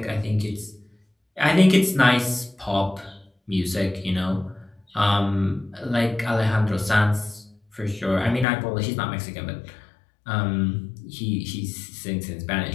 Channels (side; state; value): right; drops out; at 8.5 s